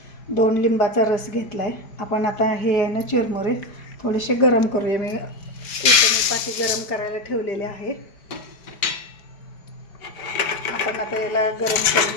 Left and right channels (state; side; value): late; right; 4.9 ms